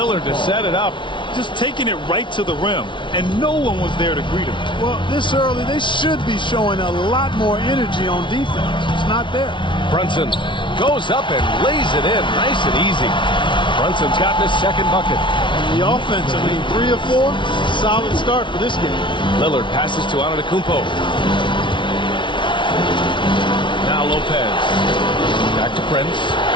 to set it up. Just taking it right to the rim, and no one was there to greet him. Well, this early, they should be showing a lot more energy on defense. It's not there. Brunson goes up and lays it in nice and easy. Brunson's gotten his second bucket. And the offense, I mean, 3 of 4, solid start for this game. Lillard passes to Antetokounmpo. Now Lopez. Back to Prince.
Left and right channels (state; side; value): late; right; 0.24 ms